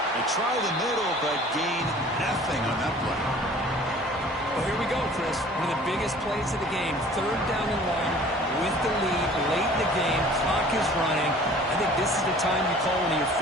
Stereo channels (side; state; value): both; normal; correlation 0.48